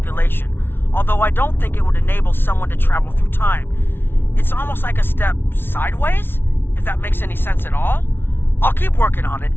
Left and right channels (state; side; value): late; right; 0.11 ms